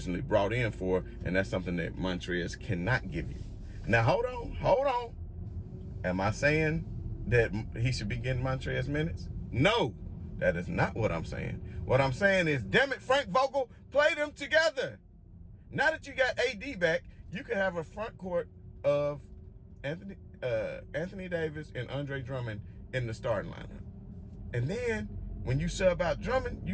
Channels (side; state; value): both; identical; correlation 1.00